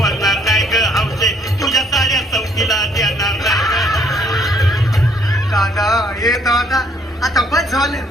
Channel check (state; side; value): normal; both; correlation 0.66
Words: नाही ग हौशे, तुझ्या साऱ्या चौकीला देणार नाही. दादा हे दादा आता बस झालं,